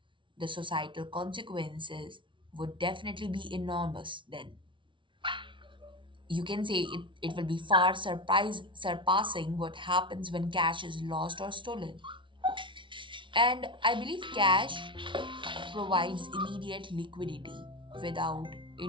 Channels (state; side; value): late; left; 0.24 ms